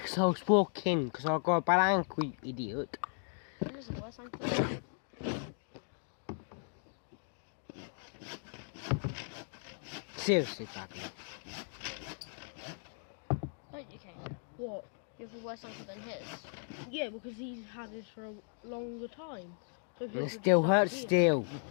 I was walking, because I got a bad ankle, you idiot. It is the worst thing. Seriously, badly. Don't you, Kane? What? You have a worse ankle than his? Yeah, because he's had this for a longer time. So And it still hurts still.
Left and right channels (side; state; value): right; silent; 53 dB below the other